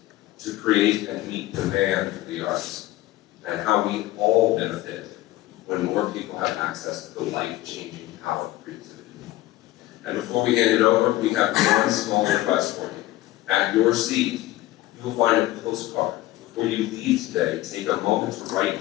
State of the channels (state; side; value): quieter; right; 16.7 dB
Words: to create and meet demand for the arts, and how we all benefit when more people have access to the life-changing power of creativity. And before we hand it over, we have one small request for you. At your seat, you will find a postcard. Before you leave today, take a moment to write